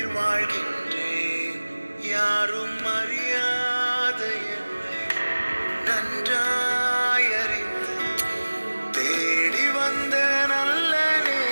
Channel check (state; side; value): inverted; both; correlation -1.00